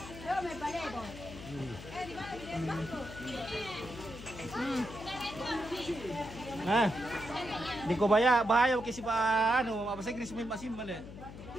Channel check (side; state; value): left; noise; hum, 13 dB below the sound